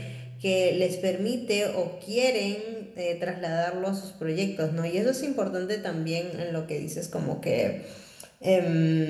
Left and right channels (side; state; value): both; identical; correlation 1.00